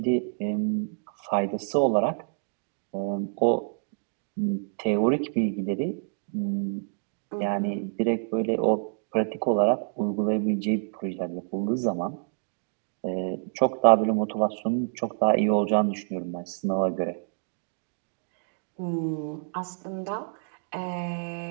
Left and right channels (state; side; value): silent; left; digital silence